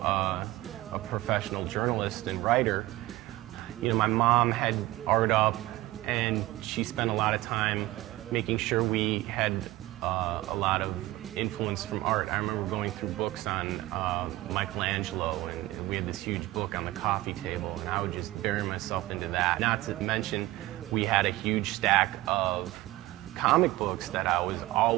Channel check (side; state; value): left; quieter; 18.1 dB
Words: a professional journalist and writer. You know, my mom had art up and she spent a lot of time making sure we had a lot of influence from art. I remember going through books on Michelangelo, and we had this huge book on the coffee table, and I would just bury myself into that. Not to mention, we had a huge stack of comic books that I was